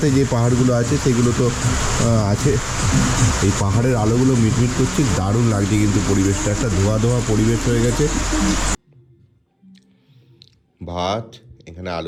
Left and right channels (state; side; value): identical; both; correlation 1.00